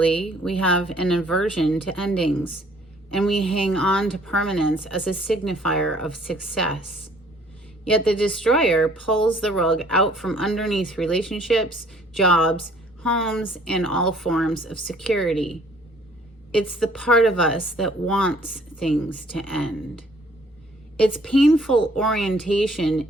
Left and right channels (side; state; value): both; normal; correlation 0.59